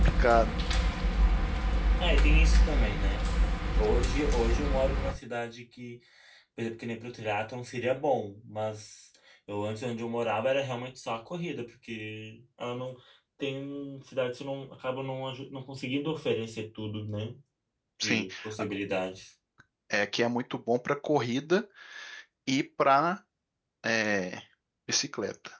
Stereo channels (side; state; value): both; identical; correlation 1.00